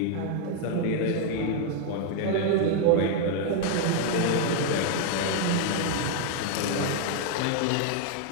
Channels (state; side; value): different; both; correlation 0.00